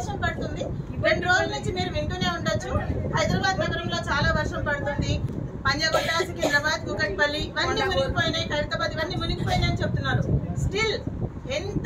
పడుతుంది. 2 రోజుల నుంచి మీరు వింటూనే ఉండొచ్చు, హైదరాబాద్ నగరంలో చాలా వర్షం పడుతుంది. పంజాగుట్ట, సికింద్రాబాద్, కూకట్పల్లి ఇవన్నీ మునిగిపోయినాయి, ఖైరతాబాద్ ఇవన్నీ మునిగిపోయినాయి అని చెప్తున్నారు. స్టిల్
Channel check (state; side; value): identical; both; correlation 1.00